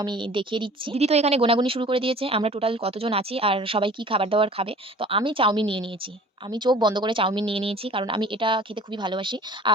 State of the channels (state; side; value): normal; both; correlation 0.46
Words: আমি দেখিয়ে দিচ্ছি। দিদি তো এখানে গোনাগুনি শুরু করে দিয়েছে। আমরা টোটাল কতজন আছি আর সবাই কি খাবার-দাবার খাবে। তো আমি চাউমিন নিয়ে নিয়েছি। আমি চোখ বন্ধ করে চাউমিন নিয়ে নিয়েছি। কারণ আমি এটা খেতে খুবই ভালোবাসি।